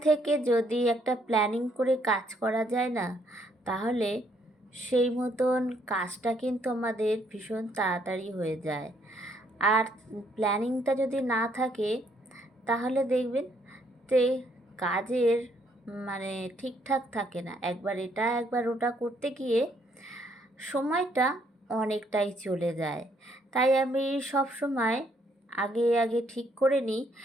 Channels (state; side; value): normal; both; correlation 0.70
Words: থেকে যদি একটা প্ল্যানিং করে কাজ করা যায় না, তাহলে সেই মতন কাজটা কিন্তু আমাদের ভীষণ তাড়াতাড়ি হয়ে যায়। আর প্ল্যানিংটা যদি না থাকে, তাহলে দেখবেন যে কাজের মানে ঠিকঠাক থাকে না। একবার এটা একবার ওটা করতে গিয়ে সময়টা অনেকটাই চলে যায়। তাই আমি সব সময় আগে ঠিক করে নিই